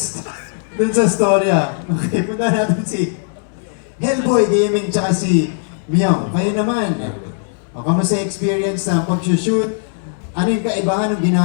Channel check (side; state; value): right; silent; 66 dB below the other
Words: dun sa storya. Okay, punta natin si Hellboy Gaming tsaka si Myong. Kayo naman, kamusta yung experience sa pag-shoot? Ano yung kaibahan ng